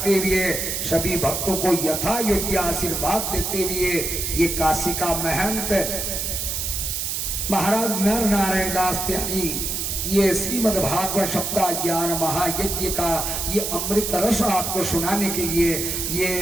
हुए, सभी भक्तों को यथा योग्य आशीर्वाद देते हुए, ये काशी का महंत महाराज नर नारायण दास त्यागी ये श्रीमद् भागवत सप्ताह ज्ञान महायज्ञ का ये अमृत रस आपको सुनाने के लिए ये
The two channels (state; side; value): noise; right; hiss, 2 dB below the sound